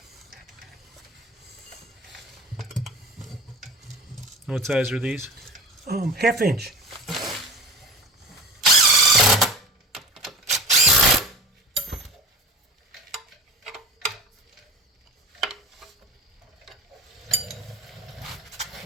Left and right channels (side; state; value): both; normal; correlation 0.34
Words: What size are these? 1/2 inch.